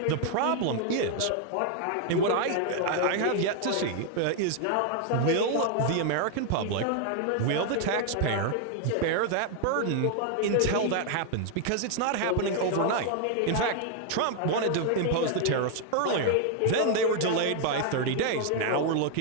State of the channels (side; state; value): both; different; correlation 0.00